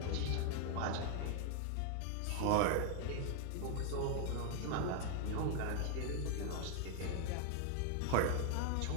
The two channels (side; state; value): both; different; correlation 0.00